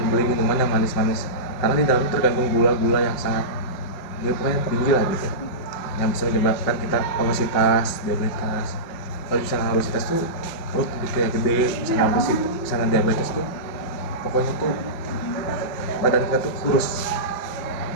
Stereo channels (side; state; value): right; late; 5.5 ms